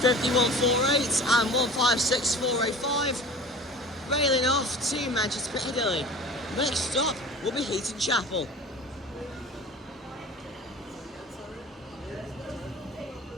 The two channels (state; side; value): normal; both; correlation 0.38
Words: and 156.485. Railing off to Manchester Piccadilly. Next stop will be Heaton Chapel.